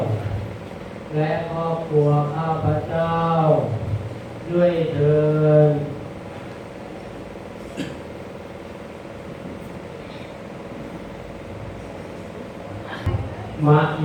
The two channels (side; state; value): both; identical; correlation 1.00